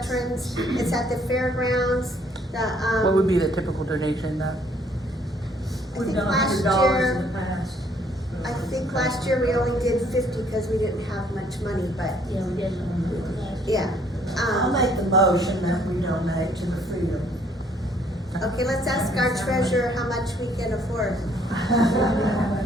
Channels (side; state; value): both; normal; correlation 0.64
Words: It's at the fairgrounds. What would be the typical donation then? I think We've done last $100 year, in the past. I think last year we only did 50 because we didn't have much money, but Yeah, we did. yeah. I'll make the motion that we donate to the Freedom. Okay, let's ask our treasurer how much we can afford.